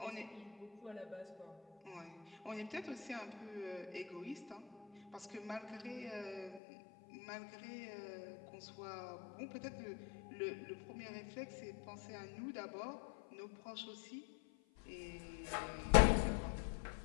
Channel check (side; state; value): right; drops out; at 6.6 s